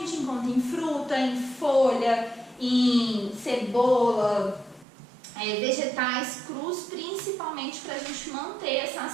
encontra em fruta, em folha, em cebola, vegetais crus, principalmente para a gente manter essa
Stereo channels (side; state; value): left; drops out; at 4.9 s